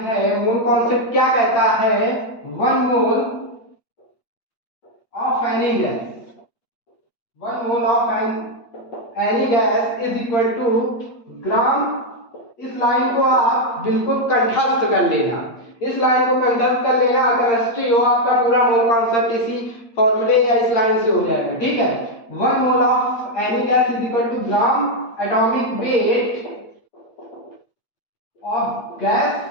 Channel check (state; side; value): late; right; 8.5 ms